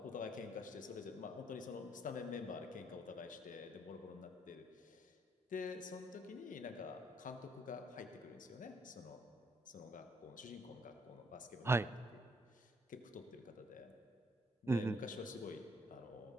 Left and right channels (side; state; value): both; normal; correlation 0.68